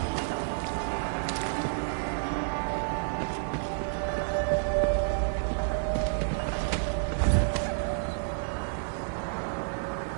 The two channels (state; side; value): silent; left; 58 dB below the other